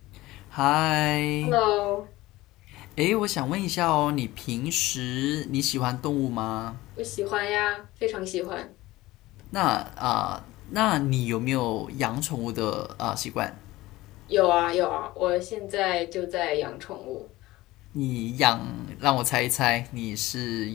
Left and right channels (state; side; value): quieter; right; 18.2 dB